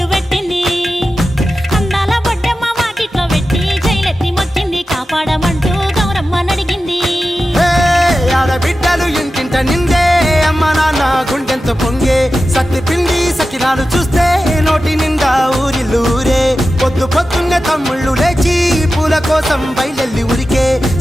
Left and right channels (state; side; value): normal; both; correlation 0.93